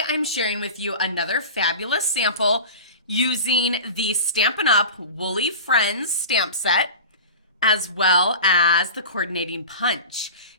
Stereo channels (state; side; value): inverted; both; correlation -0.32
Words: I'm sharing with you another fabulous sample using the Stampin' Up! Woolly Friends stamp set, as well as the coordinating punch.